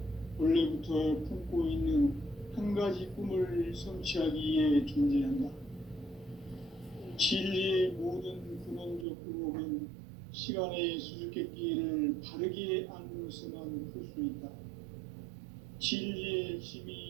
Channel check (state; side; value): drops out; left; at 9.1 s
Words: 원래부터 품고 있는 한 가지 꿈을 성취하기 위해 존재한다. 진리의 모든 근원적 의혹은 시간의 수수께끼를 바르게 알므로서만 풀 수 있다. 진리의